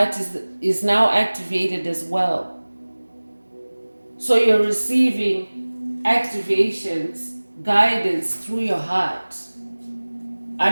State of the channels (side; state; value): both; inverted; correlation -1.00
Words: is now activated as well. So you're receiving activations, guidance through your heart.